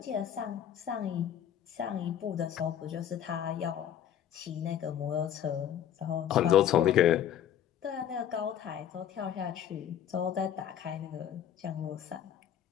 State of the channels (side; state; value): right; quieter; 9.9 dB